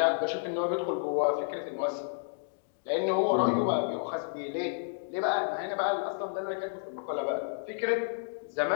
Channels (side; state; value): right; silent; digital silence